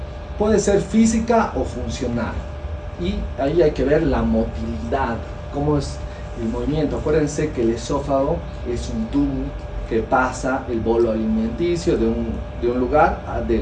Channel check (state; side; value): identical; both; correlation 1.00